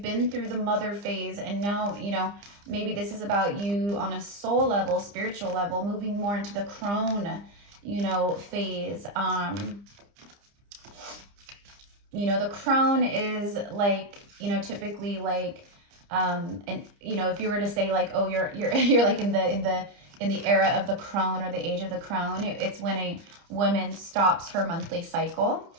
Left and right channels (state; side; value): late; left; 30 ms